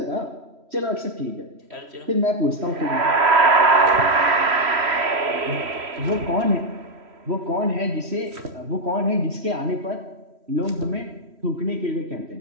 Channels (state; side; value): late; left; 3.1 ms